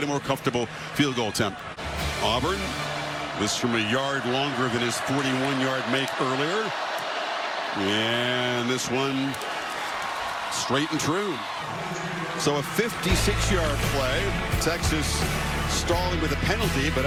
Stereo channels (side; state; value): both; identical; correlation 1.00